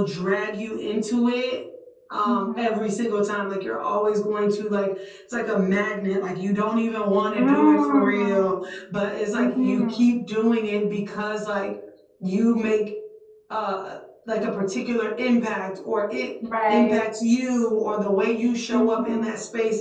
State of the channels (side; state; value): both; identical; correlation 1.00